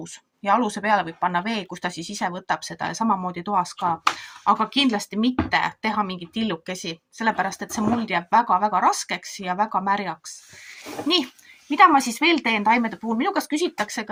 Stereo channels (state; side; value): identical; both; correlation 1.00